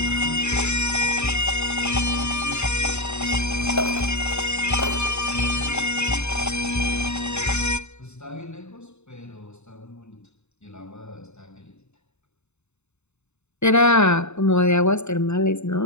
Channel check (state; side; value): late; right; 0.82 ms